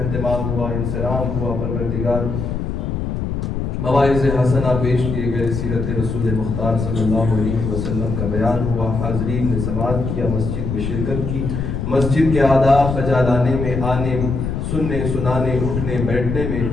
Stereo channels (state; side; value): noise; left; rumble, 3 dB below the sound